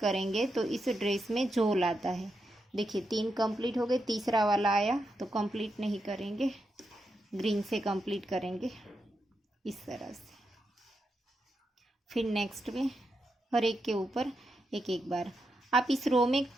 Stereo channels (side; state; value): both; normal; correlation 0.85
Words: तो इस ड्रेस में झोल आता है। देखिए 3 कंप्लीट हो गए, तीसरा वाला आया तो कंप्लीट नहीं करेंगे, ग्रीन से कंप्लीट करेंगे इस तरह से। फिर नेक्स्ट में हर एक के ऊपर एक एक बार। आप इस रो में